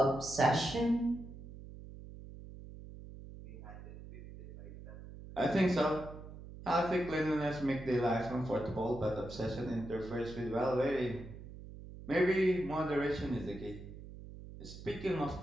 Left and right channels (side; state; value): right; noise; hum, 14 dB below the sound